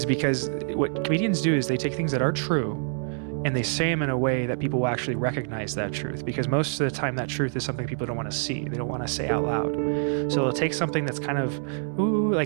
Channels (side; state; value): left; silent; 61 dB below the other